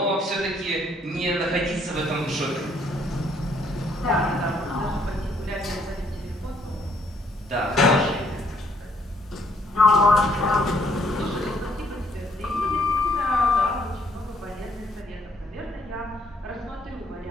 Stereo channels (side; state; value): both; normal; correlation 0.67